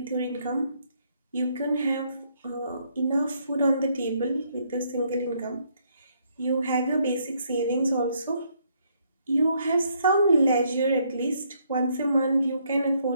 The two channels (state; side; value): inverted; both; correlation -0.71